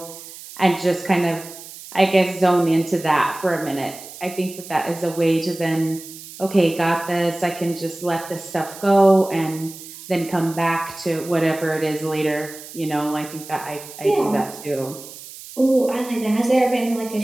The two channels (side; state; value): right; noise; hiss, 15 dB below the sound